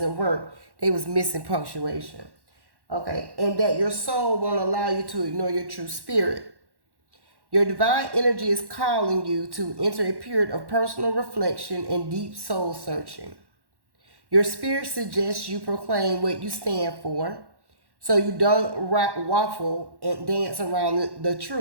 work. They was missing punctuation. Okay, and that your soul won't allow you to ignore your true spirit. Your divine energy is calling you to enter a period of personal reflection and deep soul searching. Your spirit suggests you proclaim what you stand for so you don't waffle and dance around the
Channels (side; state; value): left; late; 1.1 ms